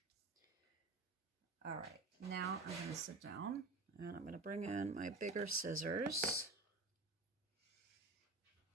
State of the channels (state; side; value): quieter; left; 3.3 dB